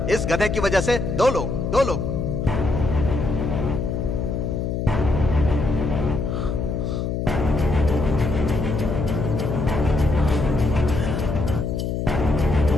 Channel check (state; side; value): noise; left; hum, 2 dB below the sound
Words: इस गधे की वजह से दो लोग।